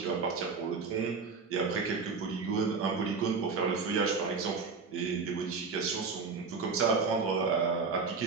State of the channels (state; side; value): quieter; left; 4.9 dB